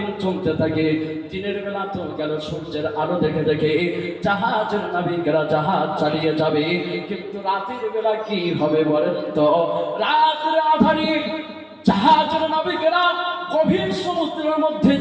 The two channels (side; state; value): both; identical; correlation 1.00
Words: চলতে থাকে। দিনের বেলা তো গেল সূর্যের আলো দেখে দেখে জাহাজের নাবিকেরা জাহাজ চালিয়ে যাবে, কিন্তু রাতের বেলা কি হবে বলেন তো? রাতের আধারে জাহাজের নাবিকেরা গভীর সমুদ্রের মধ্যে